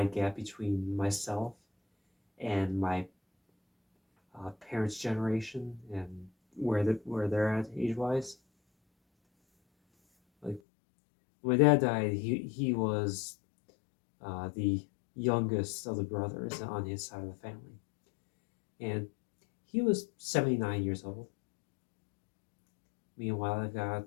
gap between myself and my parents' generation and where they're at age wise. Like when my dad died, he was the youngest of the brothers on his side of the family, and he was 79 years old. Meanwhile, I've got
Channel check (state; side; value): drops out; right; at 10.6 s